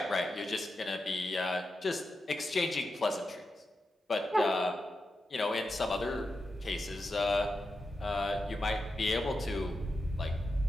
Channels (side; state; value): both; normal; correlation 0.89